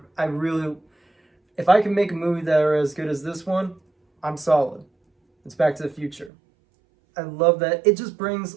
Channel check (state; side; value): drops out; left; at 6.3 s